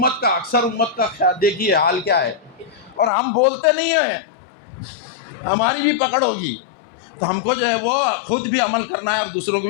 کا، اکثر امت کا دیکھیے حال کیا ہے. اور ہم بولتے نہیں ہیں، ہماری بھی پکڑ ہوگی. تو ہم کو جو ہے وہ خود بھی عمل کرنا ہے اور دوسروں کو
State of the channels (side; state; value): right; drops out; at 3.1 s